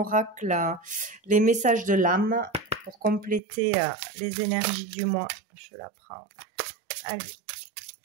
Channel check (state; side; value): drops out; left; at 3.4 s